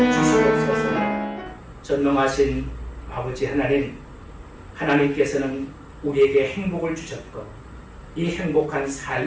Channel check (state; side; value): identical; both; correlation 1.00